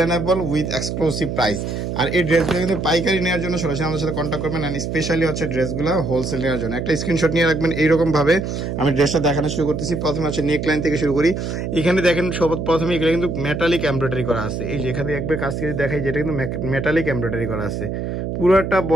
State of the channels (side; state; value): right; noise; hum, 4 dB below the sound